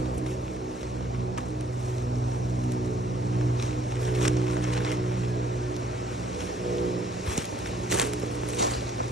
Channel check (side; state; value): both; normal; correlation 0.62